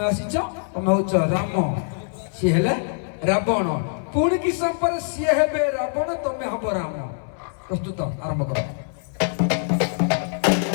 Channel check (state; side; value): silent; right; 63 dB below the other